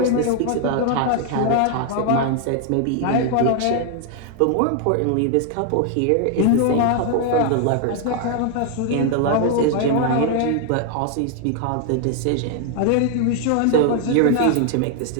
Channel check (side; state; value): both; different; correlation 0.00